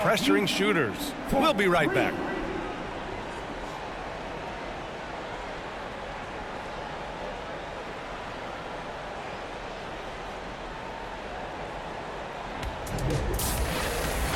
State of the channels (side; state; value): both; identical; correlation 1.00